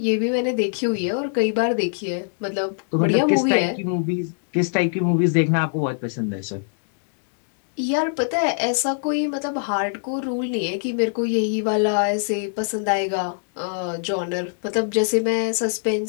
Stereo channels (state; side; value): silent; right; digital silence